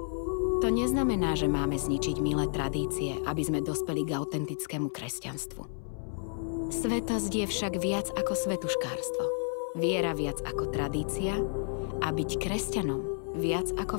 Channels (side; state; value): right; silent; 57 dB below the other